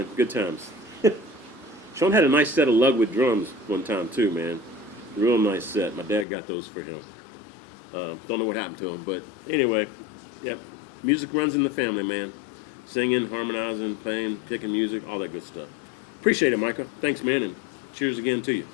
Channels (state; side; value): drops out; right; at 6.2 s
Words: Good times. Sean had a nice set of Lugwood drums one time too, man. Real nice set. My dad got those for him. Don't know what happened to him, but anyway, yep. Music runs in the family, man. singing, harmonizing, playing, picking music, all that good stuff. Appreciate it, Micah. Thanks, man, and cheers again to you.